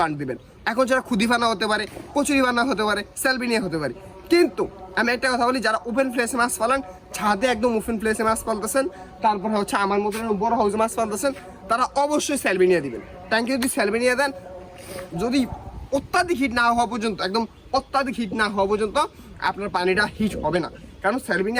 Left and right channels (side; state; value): both; identical; correlation 1.00